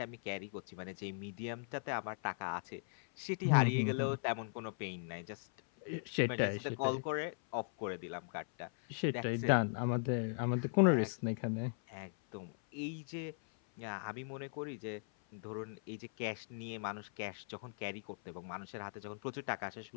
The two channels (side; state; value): right; silent; 52 dB below the other